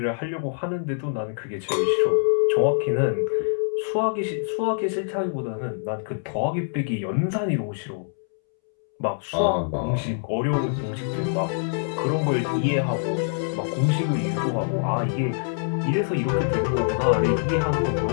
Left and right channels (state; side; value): silent; right; 62 dB below the other